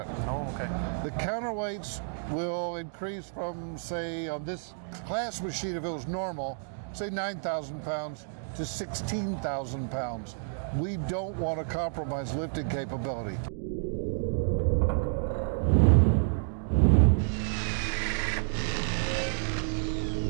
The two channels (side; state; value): left; silent; digital silence